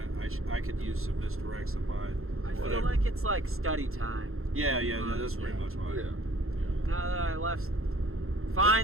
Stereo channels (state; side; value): late; left; 0.62 ms